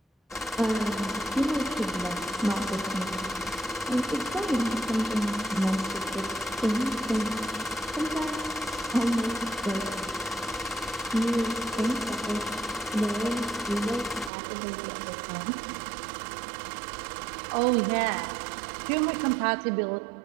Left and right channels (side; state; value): left; drops out; at 14.3 s